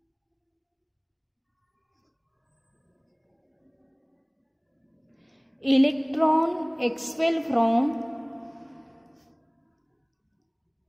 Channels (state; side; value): identical; both; correlation 1.00